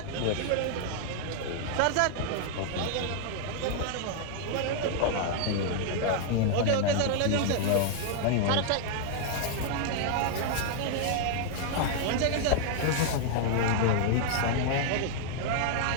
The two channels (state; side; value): different; both; correlation 0.00